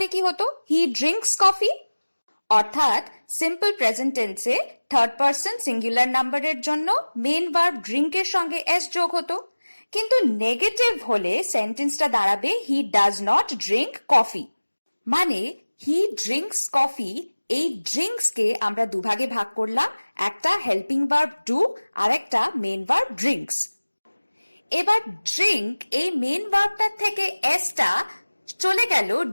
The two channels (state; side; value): inverted; both; correlation -1.00